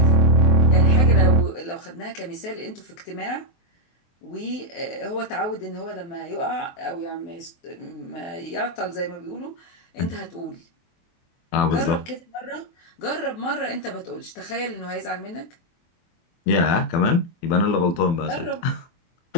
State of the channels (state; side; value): late; right; 23 ms